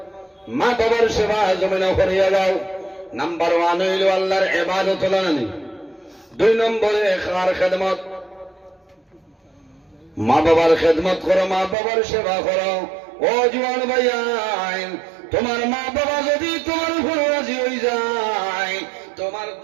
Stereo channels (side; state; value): left; drops out; at 11.8 s